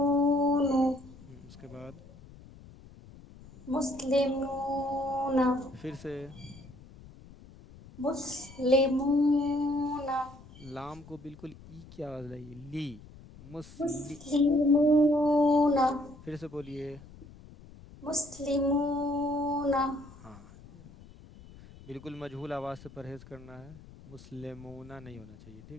اس کے بعد مسلمون پھر سے مسلمون لام کو بالکل ای کی آواز لگی لی مسلی مسلمون پھر سے بولیے مسلمون ہاں بالکل مجہول آواز سے پرہیز کرنا ہے مسلمونہ نہیں ہونا چاہیے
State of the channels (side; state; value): left; noise; rumble, 20 dB below the sound